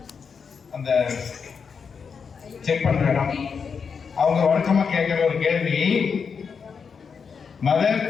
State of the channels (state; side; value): quieter; right; 6.0 dB